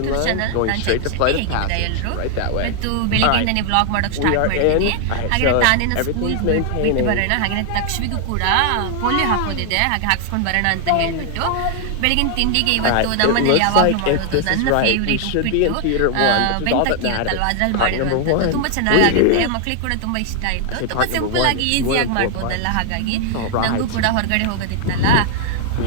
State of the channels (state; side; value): different; both; correlation 0.00